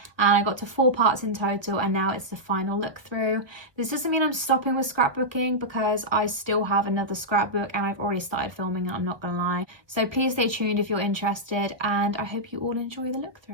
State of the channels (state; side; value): late; left; 1.3 ms